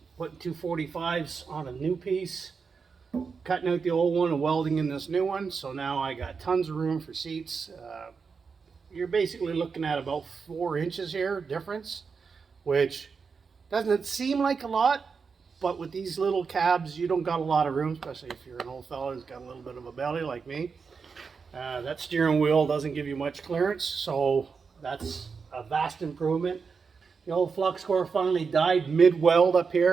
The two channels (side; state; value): left; quieter; 5.4 dB